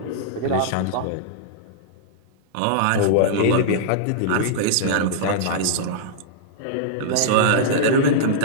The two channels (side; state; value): both; different; correlation -0.02